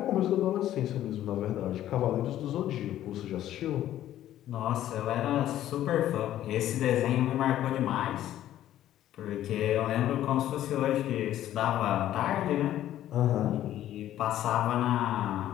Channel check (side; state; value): right; quieter; 12.6 dB